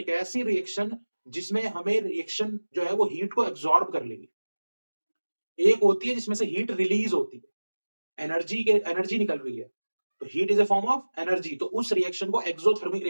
ऐसी रिएक्शन जिसमें हमें रिएक्शन जो है वो हीट को एब्जॉर्ब कर लेगी। एक होती है जिसमें से हीट रिलीज होती है, एनर्जी निकल रही है, तो heat is a form of energy, तो उस रिएक्शन को एक्सोथर्मिक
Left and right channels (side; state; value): both; inverted; correlation -1.00